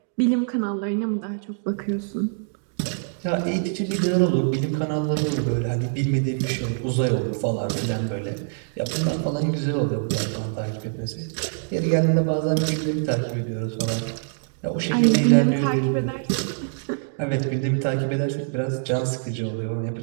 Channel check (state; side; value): silent; left; digital silence